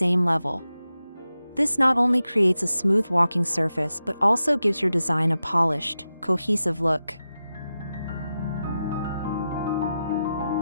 level. This not only creates a smooth walking surface but also gives your design a polished, cohesive look.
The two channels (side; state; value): both; inverted; correlation -0.91